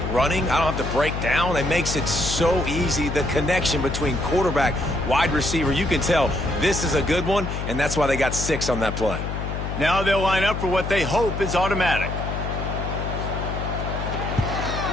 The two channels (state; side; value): noise; left; hum, 4 dB below the sound